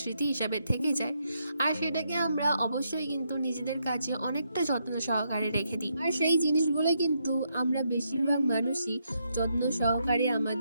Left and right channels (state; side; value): inverted; both; correlation -0.79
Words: স্মৃতি হিসাবে থেকে যায়। আর সেটাকে আমরা অবশ্যই কিন্তু নিজেদের কাছে অনেকটা যত্ন সহকারে রেখে দিই, আর সেই জিনিসগুলো কিন্তু আমরা বেশিরভাগ মানুষই যত্ন সহকারে